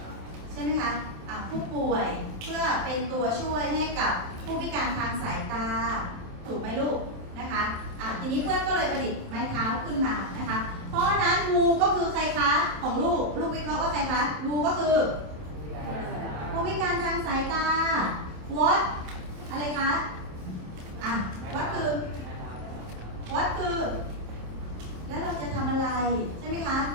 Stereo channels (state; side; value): late; left; 27 ms